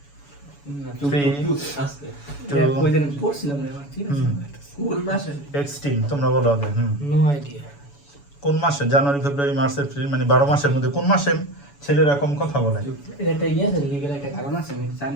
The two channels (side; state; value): right; late; 7.0 ms